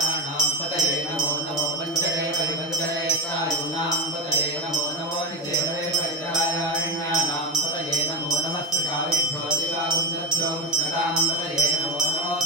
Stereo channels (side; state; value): both; normal; correlation 0.23